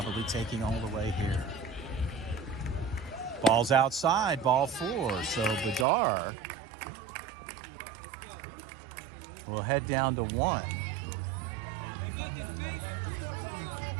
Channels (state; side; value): drops out; left; at 5.9 s